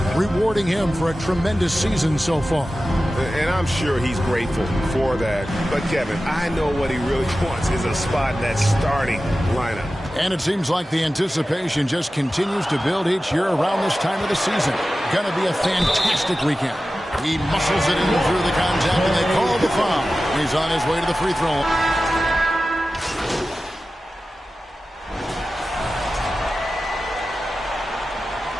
rewarding him for a tremendous season so far. And I'm sure he's grateful for that. But, Kevin, I know what he really wants is a spot in that starting lineup. And it seems like the anticipation just continues to build each year around this time of the season. Going to be a fantastic weekend. He muscles it in through the contact, and they call the foul. He's on his way to the free throw.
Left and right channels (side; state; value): both; normal; correlation 0.95